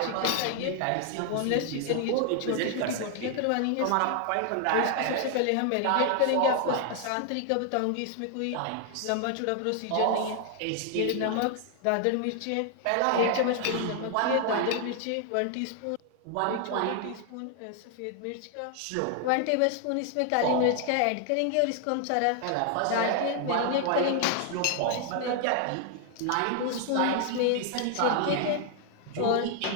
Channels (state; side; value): different; both; correlation 0.00